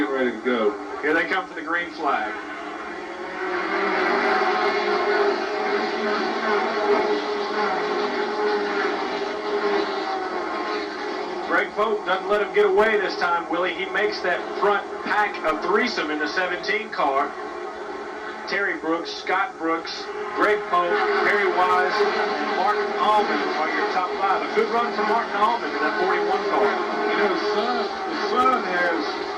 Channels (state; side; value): identical; both; correlation 1.00